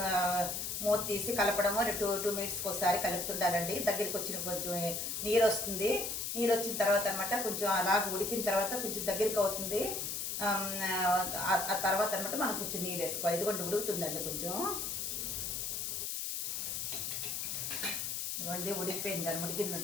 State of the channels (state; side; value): noise; left; hiss, 2 dB below the sound